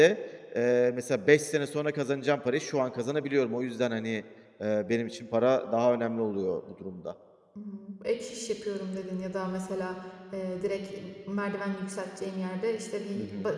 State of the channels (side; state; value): both; identical; correlation 1.00